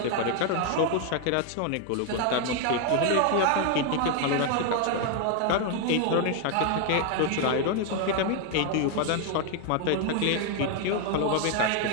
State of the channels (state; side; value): different; both; correlation 0.01